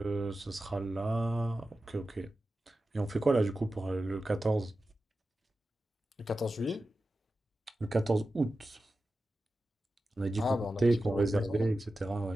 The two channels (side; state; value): both; normal; correlation 0.93